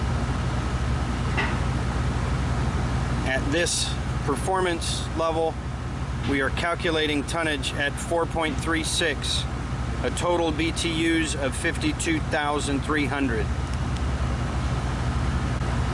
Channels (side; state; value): both; identical; correlation 1.00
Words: At this performance level, we are calculating tonnage at 4.36, a total BTUs of 52,300.